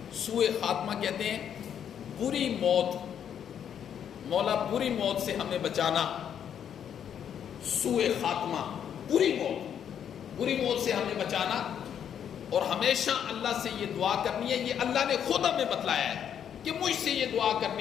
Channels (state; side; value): quieter; right; 8.8 dB